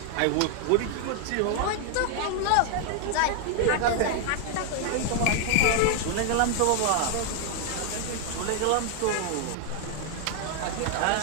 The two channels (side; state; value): both; different; correlation 0.00